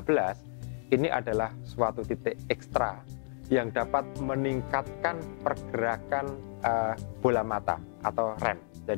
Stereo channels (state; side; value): silent; right; digital silence